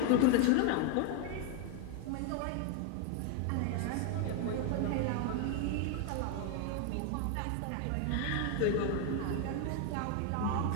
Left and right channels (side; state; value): both; different; correlation 0.01